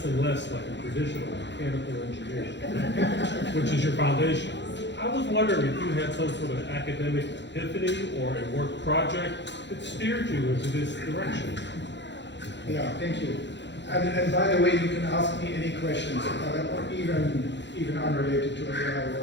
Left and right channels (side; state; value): right; late; 0.52 ms